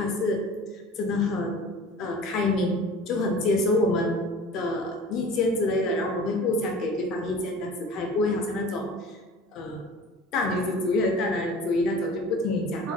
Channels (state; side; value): normal; both; correlation 0.42